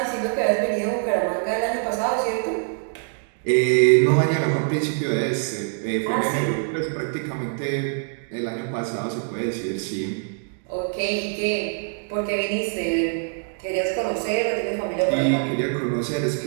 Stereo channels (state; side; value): silent; left; 61 dB below the other